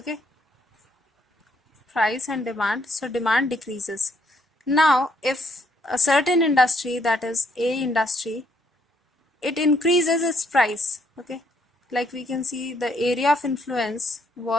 price and demand, so demand decreases. Now if a certain industry, that is A industry, it increases its price, okay, like we can see the area of influence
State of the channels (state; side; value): normal; both; correlation 0.70